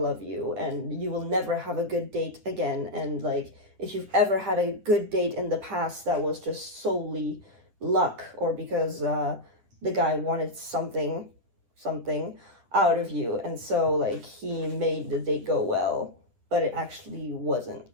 you, and you will never have a good date again. And like, if you've ever had a good date in the past, that was just solely luck, or because the guy wanted something out of you, and so like he made the date go well, but it actually wasn't.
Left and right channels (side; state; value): left; late; 10 ms